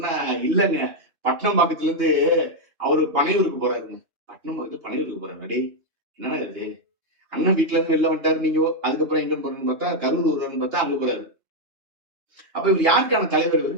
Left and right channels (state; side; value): late; left; 2.8 ms